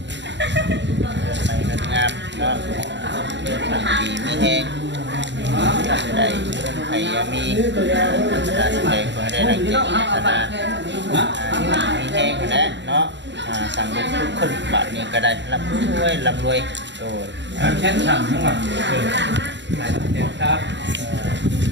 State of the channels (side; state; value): left; late; 0.52 ms